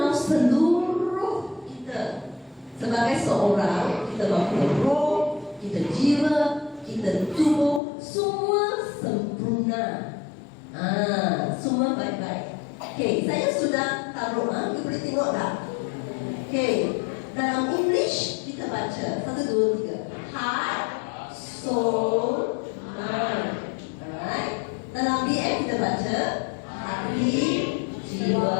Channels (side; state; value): right; drops out; at 7.8 s